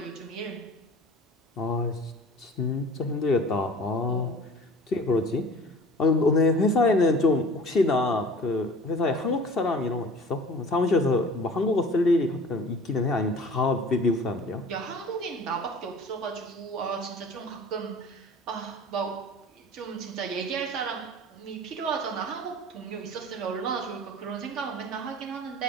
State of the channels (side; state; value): both; normal; correlation 0.44